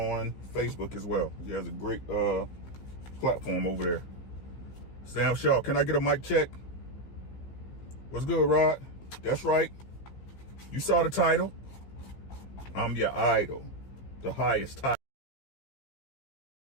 Facebook as well. He has a great platform over there. Sam Shaw, can I get a mic check? What's good, Rod? That's right. You saw the title. I'm your idol. The highest title.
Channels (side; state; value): right; late; 15 ms